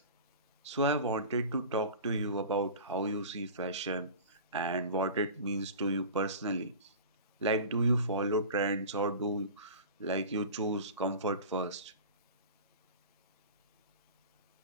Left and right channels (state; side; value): inverted; both; correlation -0.35